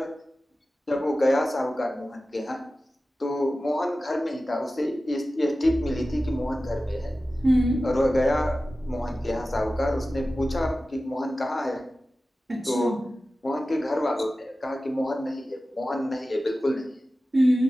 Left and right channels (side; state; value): both; normal; correlation 0.95